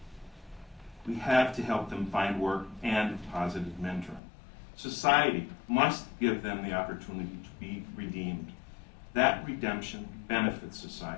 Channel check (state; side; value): drops out; right; at 4.2 s